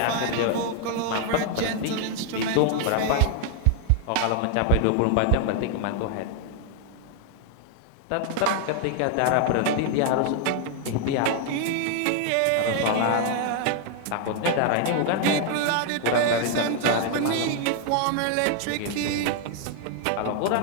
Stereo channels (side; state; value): both; different; correlation 0.00